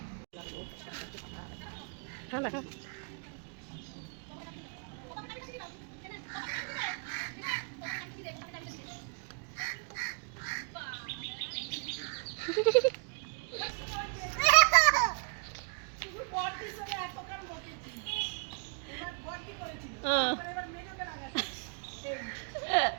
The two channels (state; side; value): quieter; left; 39.9 dB